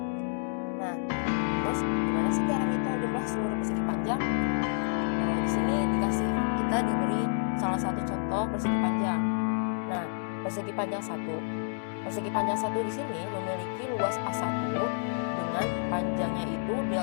Nah, terus gimana sih cara ngitung jumlah seluruh persegi panjang? Di sini kita diberi salah satu contoh persegi panjang. Nah, persegi panjang 1. Persegi panjang 1 di sini memiliki luas A1 dengan panjangnya itu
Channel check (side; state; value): right; silent; digital silence